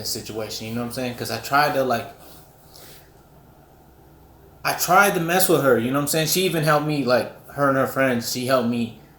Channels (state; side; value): identical; both; correlation 1.00